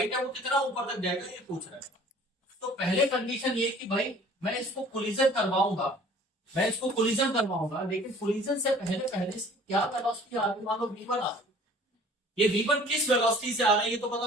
है वो कितना ऊपर तक जाएगा ये पूछ रहा है। तो पहले कंडीशन ये कि भाई मैं इसको कोलिजन करवाऊंगा, मैं इसको कोलिजन करवाऊंगा, लेकिन कोलिजन से पहले पहले क्या वेलोसिटी आ रही, मान लो v1 आ रही, ये v1 किस वेलोसिटी से आ रहा है ये तो पता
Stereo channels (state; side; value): normal; both; correlation 0.51